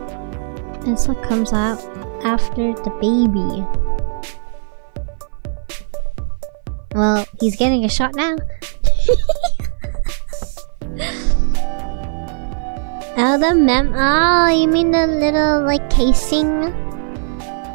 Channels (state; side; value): silent; left; 57 dB below the other